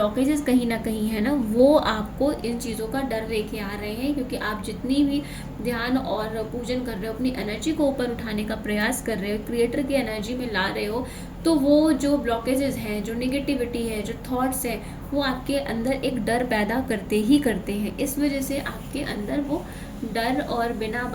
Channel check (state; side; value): identical; both; correlation 1.00